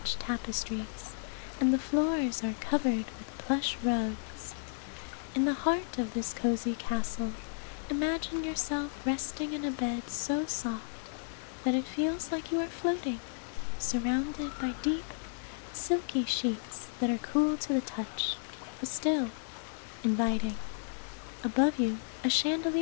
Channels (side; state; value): right; silent; digital silence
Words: tapestries, and the floors are covered with plush rugs. In the heart of this cozy castle, imagine yourself resting in a bed so soft that it feels like you are floating, surrounded by deep, silky sheets that are cool to the touch, but still inviting. Above you, a